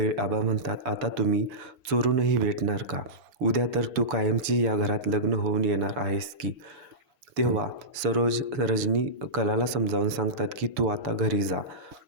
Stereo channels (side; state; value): left; late; 7.0 ms